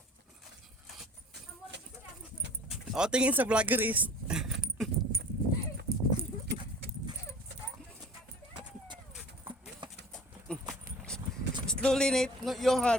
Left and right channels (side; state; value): both; normal; correlation 0.44